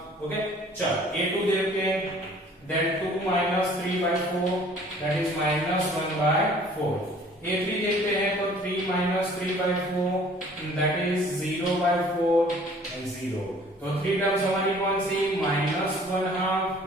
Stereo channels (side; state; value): both; normal; correlation 0.53